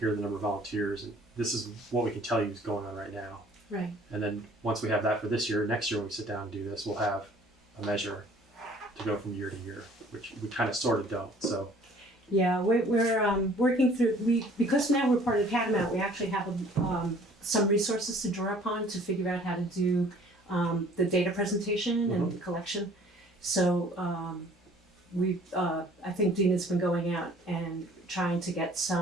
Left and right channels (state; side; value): normal; both; correlation 0.54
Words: are the number of volunteers, and this is what we can tell you is going on right now. Right. And then once we have that for this year, next year when we sit down and do this, we'll have a measure to go from year to year, which we kind of sort of don't. So Yeah, we're working through, because now we're part of Catamount, we actually have some resources to draw upon to figure out how to do the data presentation and the collection. So I think Dina's been going out and trying to get